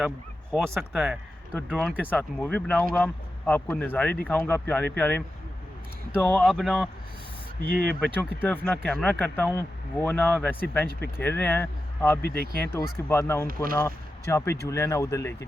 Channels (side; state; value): both; normal; correlation 0.91